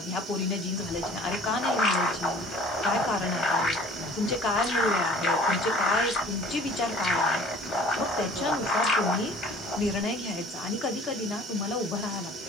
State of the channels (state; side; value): normal; both; correlation 0.49